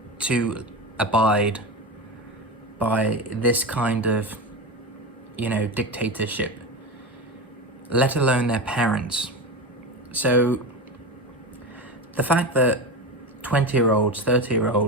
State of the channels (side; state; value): both; normal; correlation 0.22